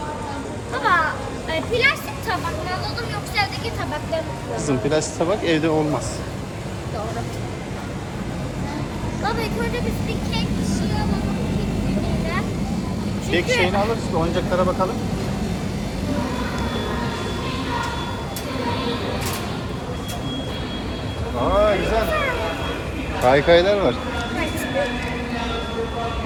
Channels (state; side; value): identical; both; correlation 1.00